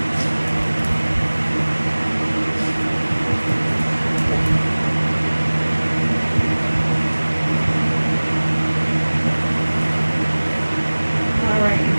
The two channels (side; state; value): both; inverted; correlation -1.00